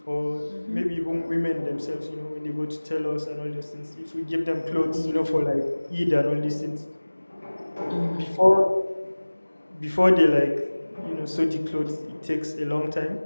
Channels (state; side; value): inverted; both; correlation -1.00